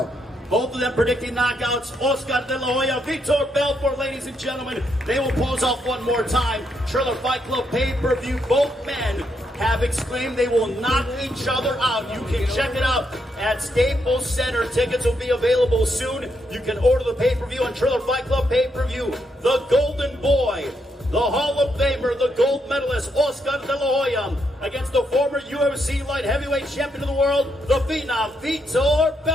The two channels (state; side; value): normal; both; correlation 0.78